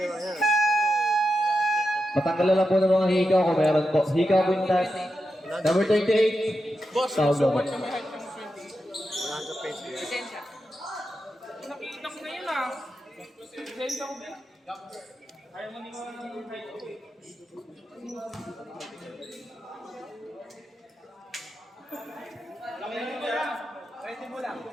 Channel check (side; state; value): both; normal; correlation 0.88